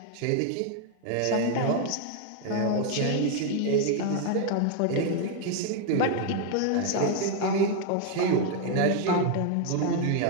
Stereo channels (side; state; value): both; different; correlation 0.01